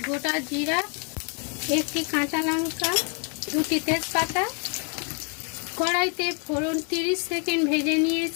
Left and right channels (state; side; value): quieter; right; 39.9 dB